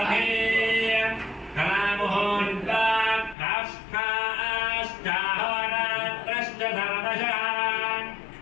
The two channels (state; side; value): drops out; right; at 3.4 s